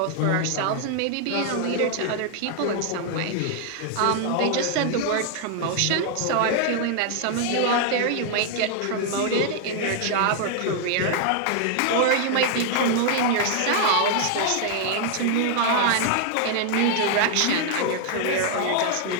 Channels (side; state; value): both; different; correlation 0.00